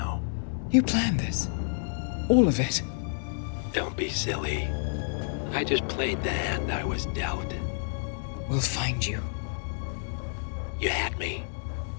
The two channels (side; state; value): right; silent; digital silence